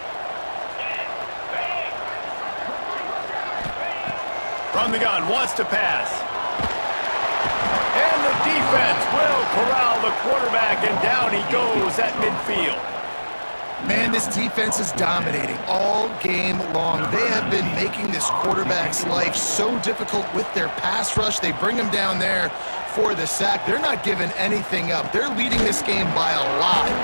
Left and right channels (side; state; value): both; inverted; correlation -1.00